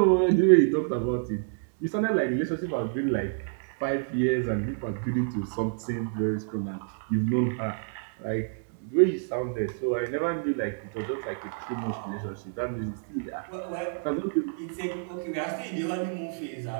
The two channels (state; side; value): silent; left; digital silence